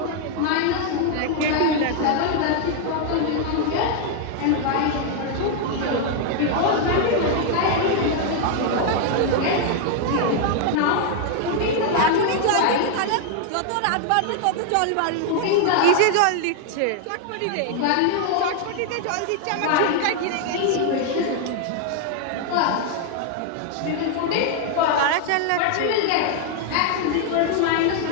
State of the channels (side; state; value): both; different; correlation 0.00